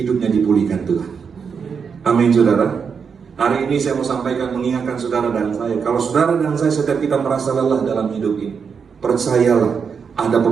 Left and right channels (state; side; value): quieter; left; 6.2 dB